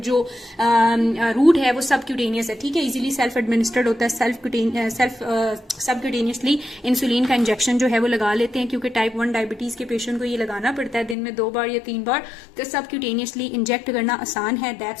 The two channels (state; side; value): drops out; right; at 11.2 s